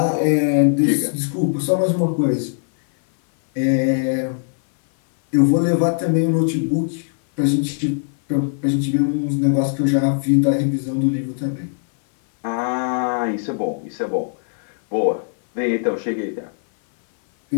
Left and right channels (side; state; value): right; silent; 59 dB below the other